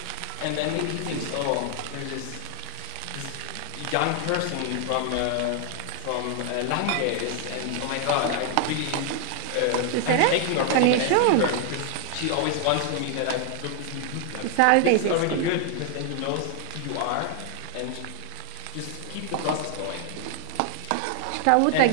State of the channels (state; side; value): different; both; correlation 0.00